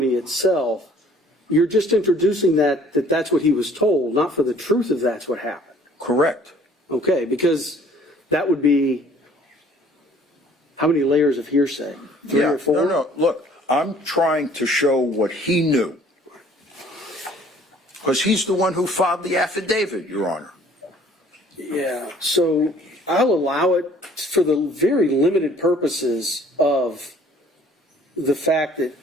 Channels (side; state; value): both; normal; correlation 0.56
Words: itself, you're just introducing that's what he was told, not for the truth of that's what happened. Correct. Okay, because that would be how many layers of hearsay? 3 or 4? No. Look, I'm trying to show what he knew. Because he's the one who filed the affidavit, Your Honor. Yeah, so I'll allow it for the very limited purposes of the fact that